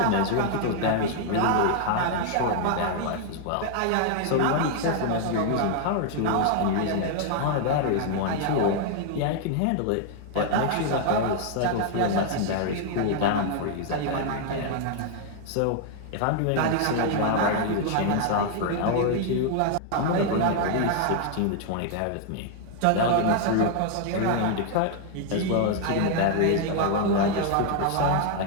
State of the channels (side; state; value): both; different; correlation 0.00